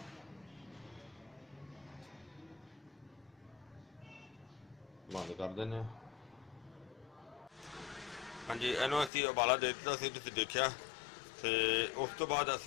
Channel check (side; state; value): right; drops out; at 9.1 s